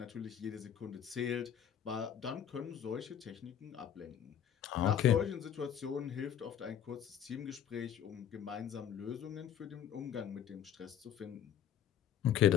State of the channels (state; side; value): quieter; right; 9.4 dB